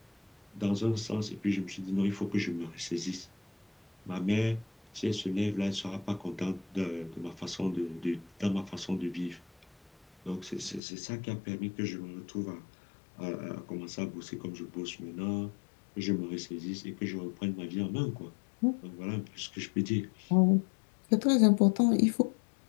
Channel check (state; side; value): drops out; right; at 10.8 s